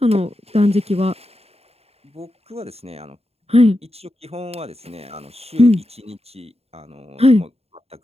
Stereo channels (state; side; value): late; left; 0.29 ms